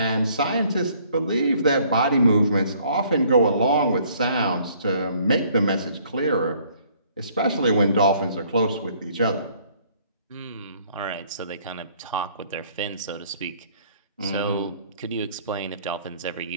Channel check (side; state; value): both; inverted; correlation -0.61